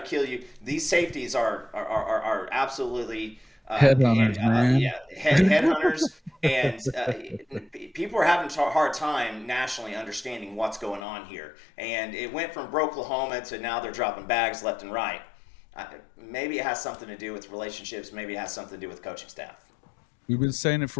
kill you. These safeties are absolutely headhunters, man. Headhunters, and people are having a hard time nationally understanding what's going on here. And it went from Oklahoma to now they're dropping bags left and right. Maybe it has something to do with relationships. Maybe it has something to do with coaching staff. We've been saying it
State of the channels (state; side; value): drops out; right; at 11.1 s